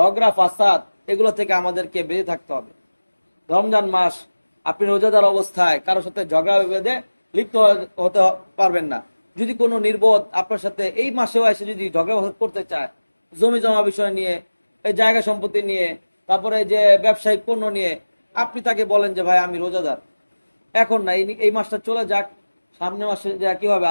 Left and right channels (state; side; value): inverted; both; correlation -1.00